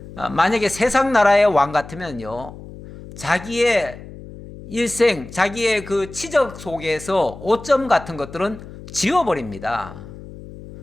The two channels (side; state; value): left; noise; hum, 15 dB below the sound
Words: 만약에 세상 나라의 왕 같으면요, 자기의 일생, 자기의 그 치적 속에서 5점 같은 것들은 지워버립니다.